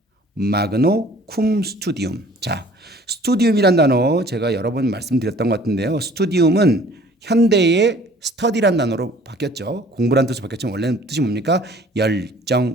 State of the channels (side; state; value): both; normal; correlation 0.53